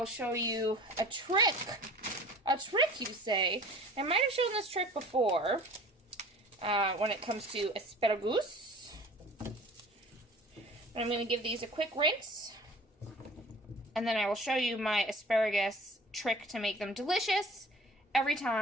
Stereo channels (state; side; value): normal; both; correlation 0.45